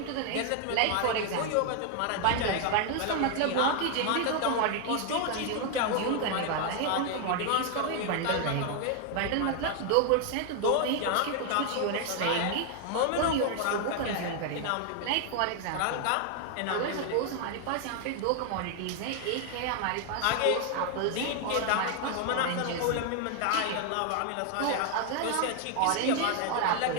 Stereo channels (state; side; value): different; both; correlation 0.00